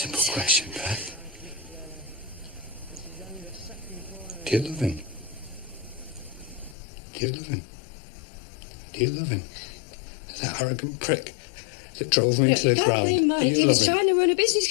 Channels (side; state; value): right; drops out; at 6.8 s